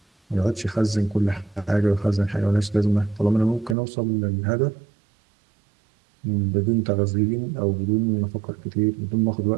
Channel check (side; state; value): left; drops out; at 3.8 s